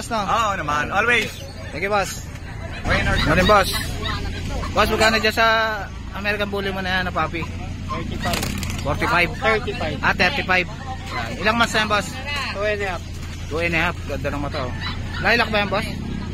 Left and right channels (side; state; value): both; identical; correlation 1.00